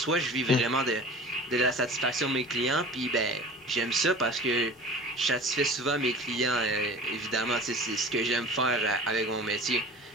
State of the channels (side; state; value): both; normal; correlation 0.40